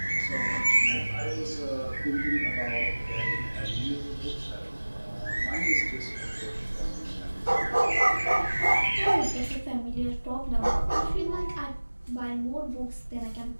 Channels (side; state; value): both; inverted; correlation -1.00